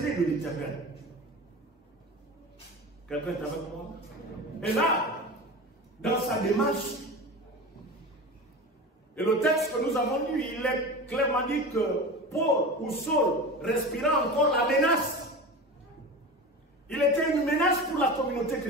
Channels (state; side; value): normal; both; correlation 0.30